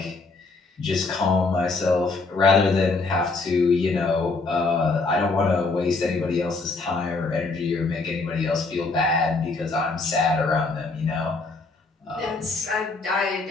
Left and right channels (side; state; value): right; quieter; 3.8 dB